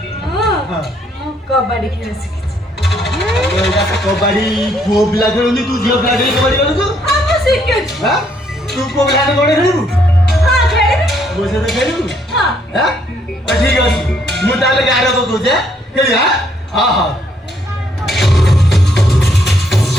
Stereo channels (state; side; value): normal; both; correlation 0.69